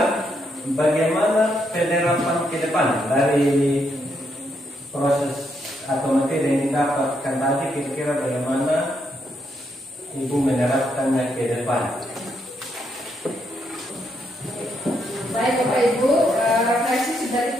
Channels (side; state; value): both; normal; correlation 0.77